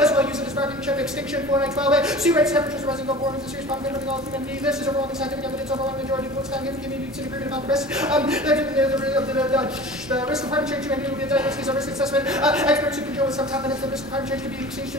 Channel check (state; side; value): normal; both; correlation 0.38